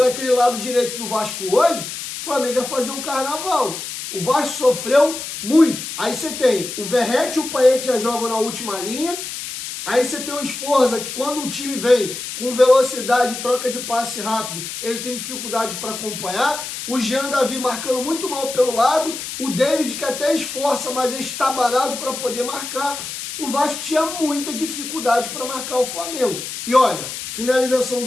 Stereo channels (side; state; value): left; noise; hiss, 7 dB below the sound